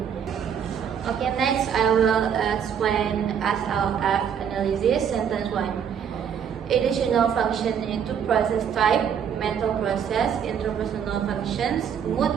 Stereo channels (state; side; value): quieter; left; 8.0 dB